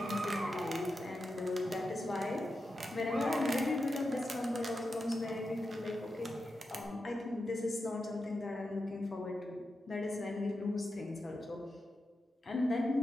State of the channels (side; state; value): both; normal; correlation 0.89